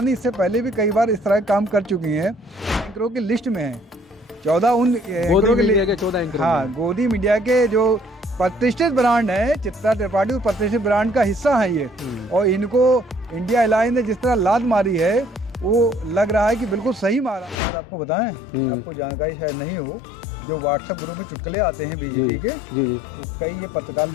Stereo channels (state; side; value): drops out; right; at 17.6 s